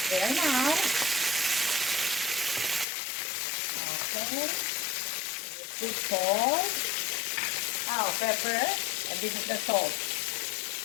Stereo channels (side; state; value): right; drops out; at 2.9 s